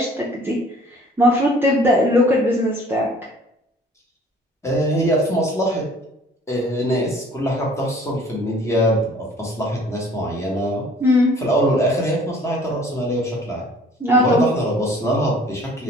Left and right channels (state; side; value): normal; both; correlation 0.53